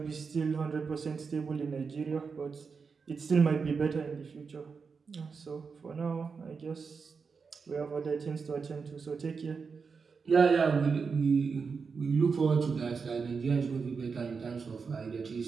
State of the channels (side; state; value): left; quieter; 5.3 dB